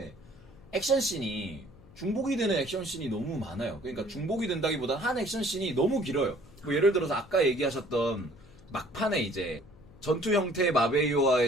액션씬이 중복이 되는 액션씬이 너무 많아요. 그러니까 중복이 된다기보다 한 액션씬이 너무 길어요. 뭐 예를 들어서 아까 얘기하셨던 막판에 이제 전투 형태의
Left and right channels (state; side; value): noise; left; hum, 24 dB below the sound